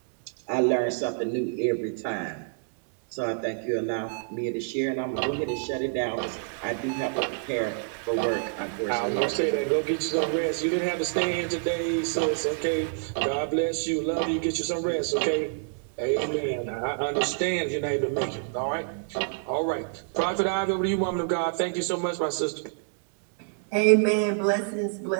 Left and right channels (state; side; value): silent; left; digital silence